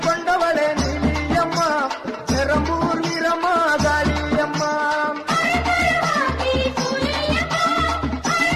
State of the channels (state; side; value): identical; both; correlation 1.00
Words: கொண்டவளே நீலியம்மா பெரம்பூர் வீரம்மா காளியம்மா